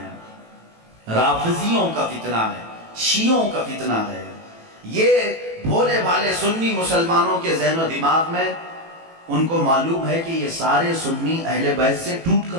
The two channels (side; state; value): left; late; 18 ms